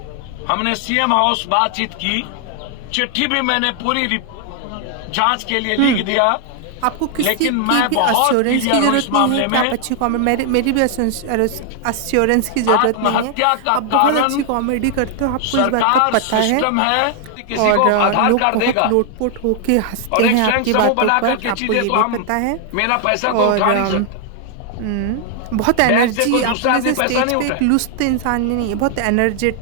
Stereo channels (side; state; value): both; different; correlation 0.00